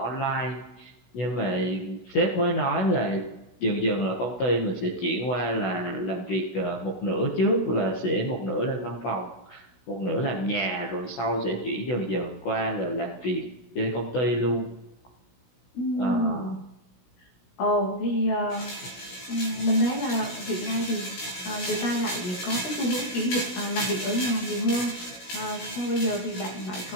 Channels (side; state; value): right; late; 16 ms